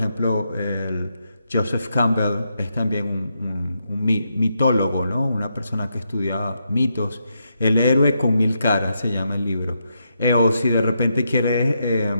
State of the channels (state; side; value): inverted; both; correlation -0.82